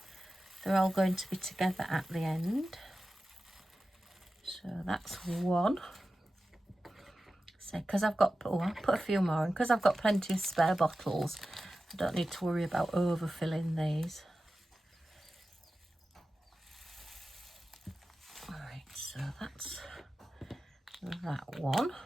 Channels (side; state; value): both; normal; correlation 0.94